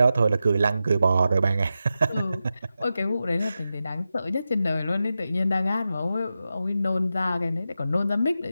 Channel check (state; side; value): inverted; both; correlation -0.90